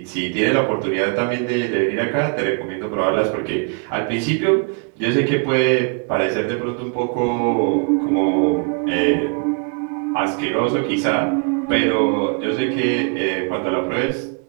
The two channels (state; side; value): quieter; left; 38.0 dB